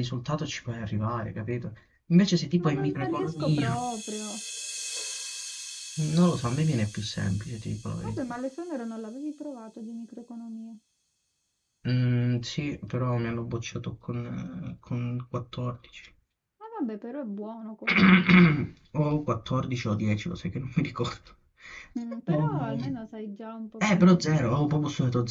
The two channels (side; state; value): both; identical; correlation 1.00